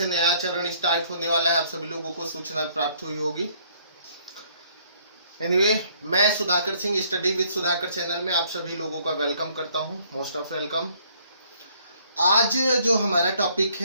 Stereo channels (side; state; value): both; inverted; correlation -0.64